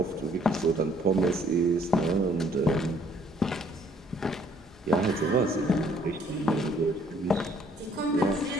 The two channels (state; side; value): normal; both; correlation 0.62